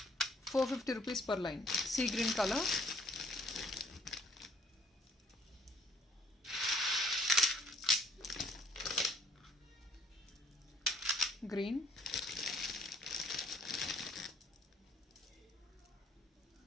450 rupees per line. Sea green color. Green.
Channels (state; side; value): normal; both; correlation 0.61